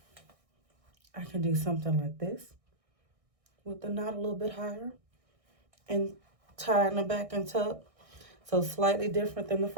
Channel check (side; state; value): left; late; 1.6 ms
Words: I can do something like this with the knot a little bit higher and tie in the back and tuck. So slightly different than the